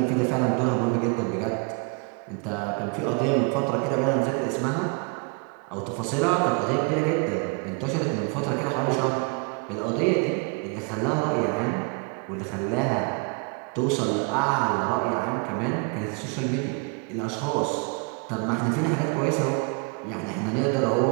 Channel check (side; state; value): left; quieter; 34.7 dB